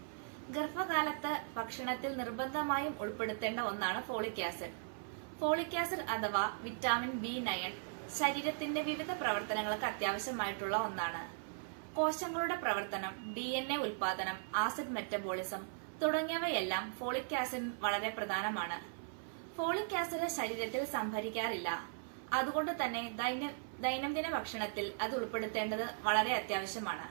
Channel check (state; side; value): silent; left; 52 dB below the other